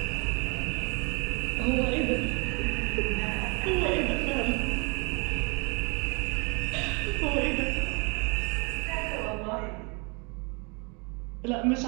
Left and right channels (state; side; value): quieter; left; 32.0 dB